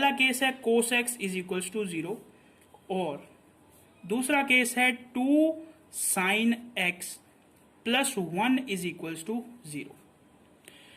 केस है cos x is equal to 0, और दूसरा केस है 2 sin x plus 1 is equal to 0।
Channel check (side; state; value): both; identical; correlation 1.00